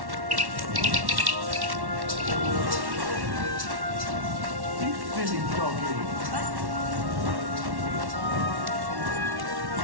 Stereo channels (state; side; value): late; left; 1.1 ms